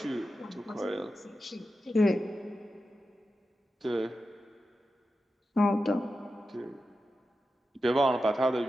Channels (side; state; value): both; normal; correlation 0.91